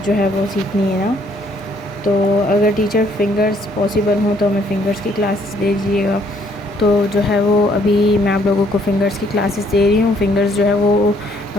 جو ہے وہ سیکھنی ہے نا، تو اگر ٹیچر فنگرز پاسبل ہوں تو ہمیں فنگرز کی کلاسز دے دیجیے گا۔ تو جو ہے وہ ابھی میں آپ لوگوں کو فنگرز کی کلاسز دے رہی ہوں۔ فنگرز جو ہے وہ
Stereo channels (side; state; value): both; normal; correlation 0.66